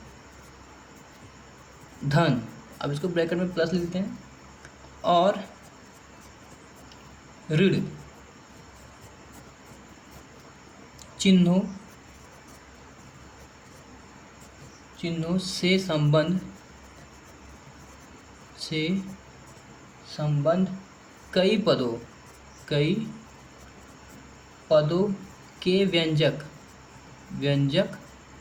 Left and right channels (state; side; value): identical; both; correlation 1.00